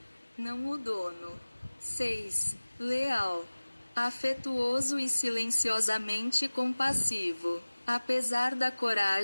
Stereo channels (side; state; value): both; inverted; correlation -1.00